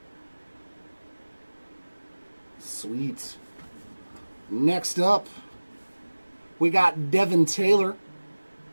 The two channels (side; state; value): both; inverted; correlation -1.00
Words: Sweet. Next up, we got Devin Taylor.